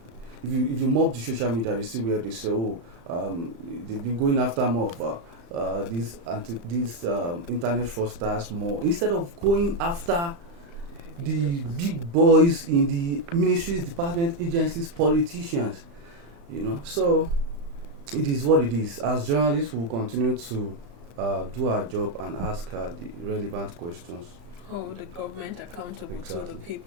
if you mob the social media, you see where they say, they've been going after more of these internet fraudsters more, instead of going after the big boys in the ministries, department, agencies, politicians. So it is what it is. As journalists, we will continue to do our job and ask the relevant questions. Hold the government accountable Exactly. to the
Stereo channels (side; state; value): left; late; 35 ms